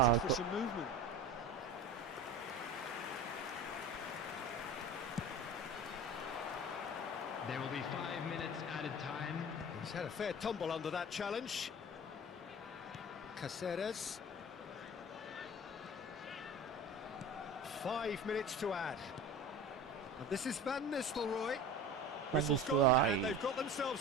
waited for some movement. There will be 5 minutes added time. He's had a fair tumble under that challenge. Caceres. 5 minutes to add. And this is Van Nistelrooy. Van Whistle's gone, and Nistelrooy. they've got themselves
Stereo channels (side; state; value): both; normal; correlation 0.35